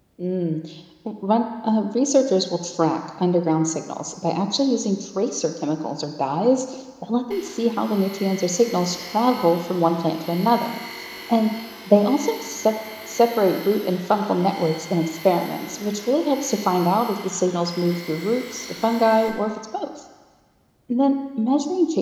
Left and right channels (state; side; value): identical; both; correlation 1.00